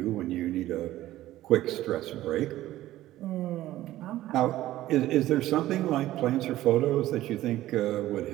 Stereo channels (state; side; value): quieter; left; 14.9 dB